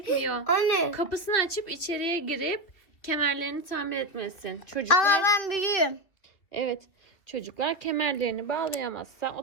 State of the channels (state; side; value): late; right; 2.3 ms